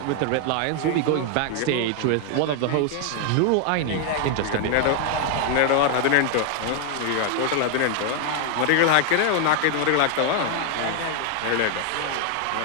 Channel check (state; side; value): different; both; correlation 0.00